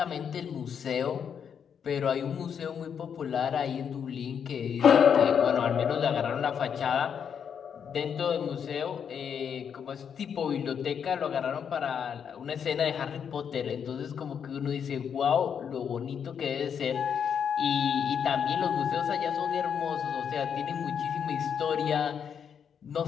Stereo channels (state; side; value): quieter; right; 7.6 dB